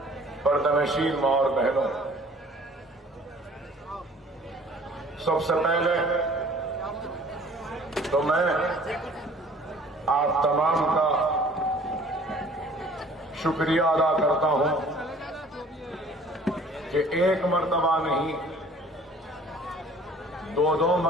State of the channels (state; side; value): normal; both; correlation 0.52